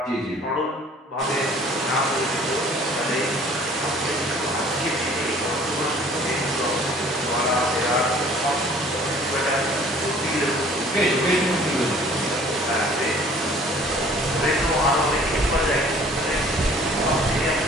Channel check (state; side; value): normal; both; correlation 0.52